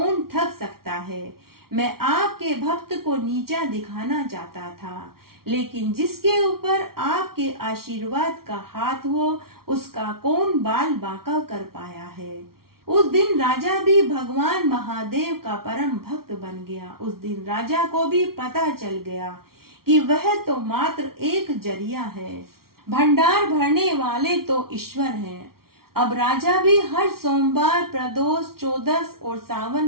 ठग सकता है। मैं आपके भक्त को नीचा दिखाना चाहता था, लेकिन जिसके ऊपर आपके आशीर्वाद का हाथ हो उसका कौन बाल बांका कर पाया है। उस दिन राजा भी भगवान महादेव का परम भक्त बन गया। उस दिन राजा को भी पता चल गया कि वह तो मात्र एक जरिया है, भंडार भरने वाले तो ईश्वर हैं। अब राजा भी हर सोमवार, प्रदोष, चौदस और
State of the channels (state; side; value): late; left; 0.94 ms